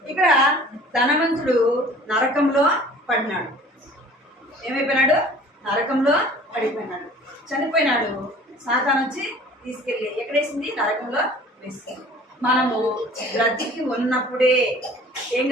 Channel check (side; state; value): both; normal; correlation 0.48